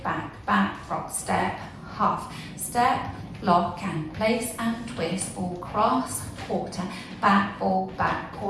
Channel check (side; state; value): both; identical; correlation 1.00